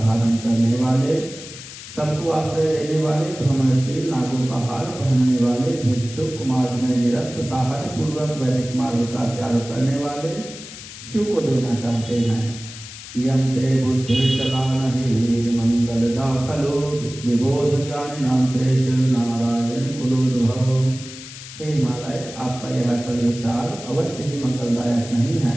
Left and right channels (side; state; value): left; noise; hiss, 14 dB below the sound